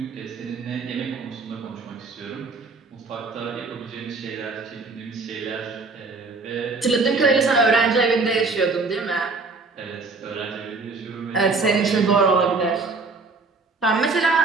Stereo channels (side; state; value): left; quieter; 3.9 dB